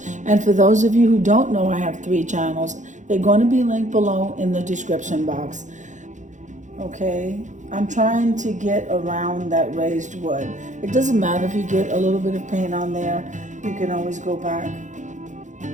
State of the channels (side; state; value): left; late; 0.35 ms